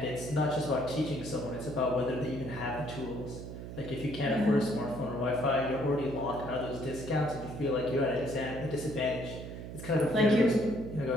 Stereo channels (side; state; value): right; noise; hum, 9 dB below the sound